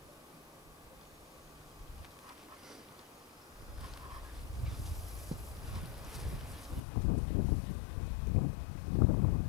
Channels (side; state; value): right; drops out; at 6.8 s